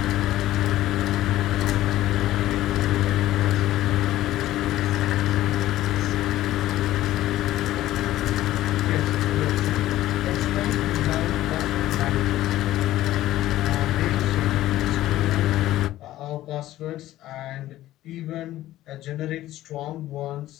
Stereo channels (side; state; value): right; quieter; 14.7 dB